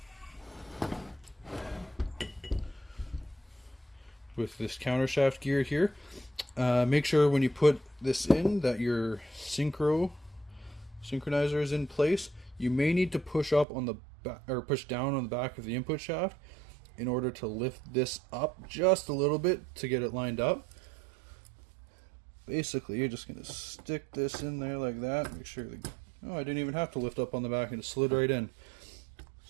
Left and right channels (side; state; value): left; drops out; at 13.7 s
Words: With this counter shaft gear here. Make sure when you put this in that your synchronizer is in place. You may need to push up on the back, or push down on the back of the input shaft in order to lift this up just a little bit to get it lined up. Basically, you're just gonna stick this in there like that. Make sure I didn't even have to lift up on the back, and it slid right in.